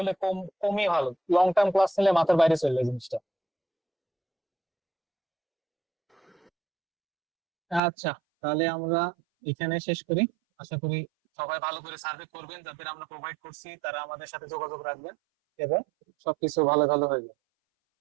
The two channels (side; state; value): left; drops out; at 7.8 s